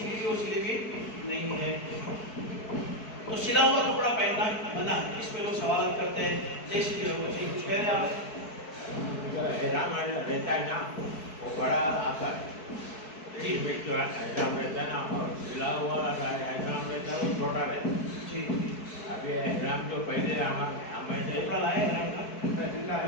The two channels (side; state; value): right; late; 4.6 ms